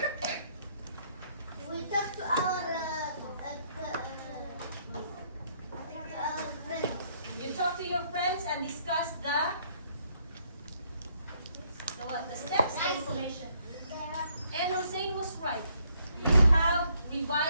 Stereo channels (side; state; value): both; inverted; correlation -0.69